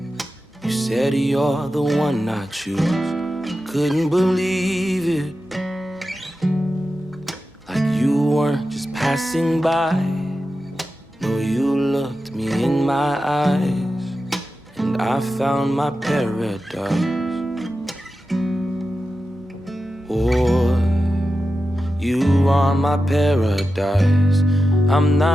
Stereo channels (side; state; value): both; normal; correlation 0.92